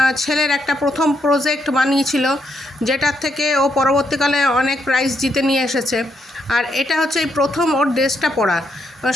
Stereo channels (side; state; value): both; normal; correlation 0.77